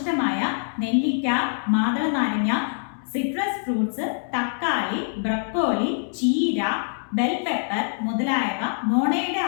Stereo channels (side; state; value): right; silent; digital silence